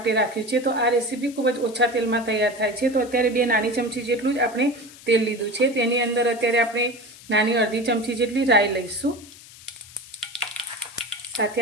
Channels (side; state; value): left; noise; hiss, 20 dB below the sound